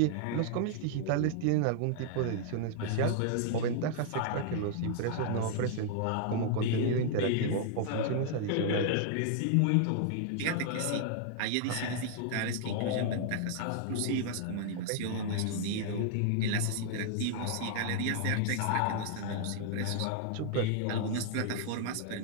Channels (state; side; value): different; both; correlation -0.01